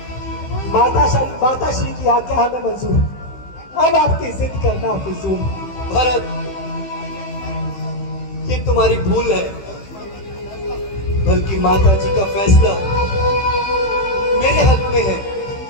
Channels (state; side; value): late; right; 15 ms